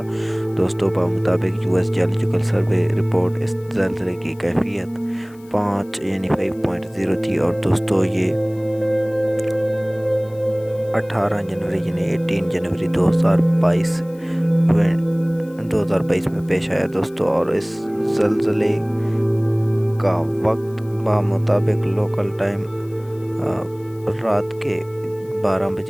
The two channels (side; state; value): left; noise; hiss, 28 dB below the sound